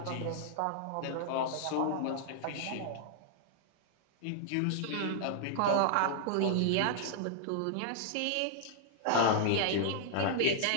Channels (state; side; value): different; both; correlation -0.01